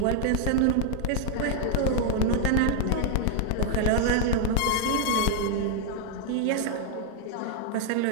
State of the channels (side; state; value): both; different; correlation 0.01